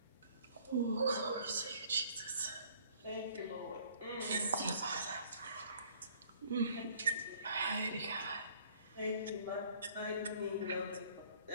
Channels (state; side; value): inverted; both; correlation -0.57